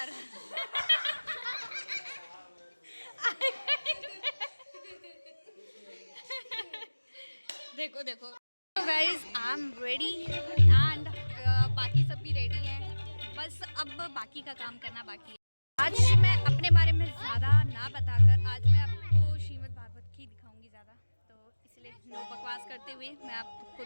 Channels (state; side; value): inverted; both; correlation -1.00